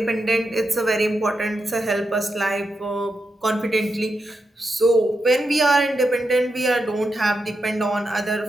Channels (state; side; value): normal; both; correlation 0.86